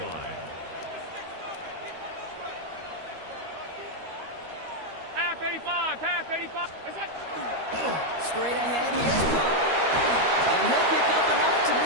line. Half 85, half 85. Straight ahead, here's Cook. And he'll pick up enough to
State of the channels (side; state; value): left; late; 13 ms